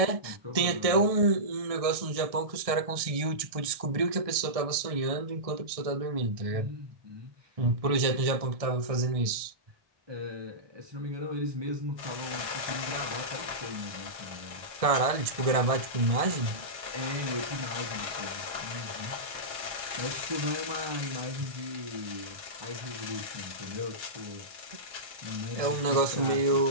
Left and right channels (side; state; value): left; late; 1.6 ms